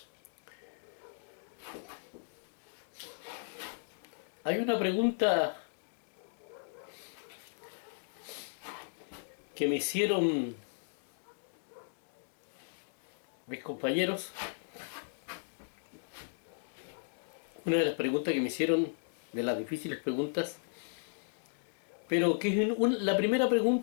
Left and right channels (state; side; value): silent; right; digital silence